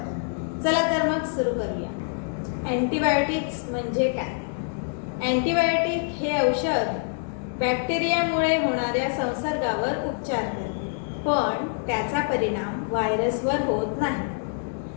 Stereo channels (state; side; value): silent; right; 61 dB below the other